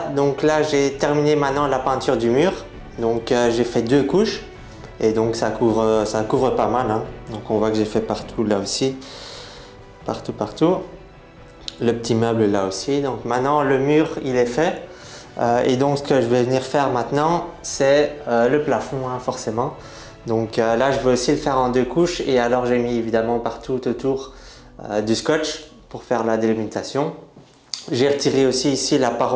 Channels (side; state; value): both; identical; correlation 1.00